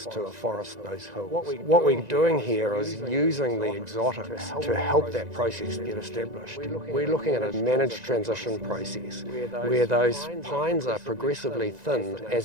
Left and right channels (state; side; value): late; left; 1.9 ms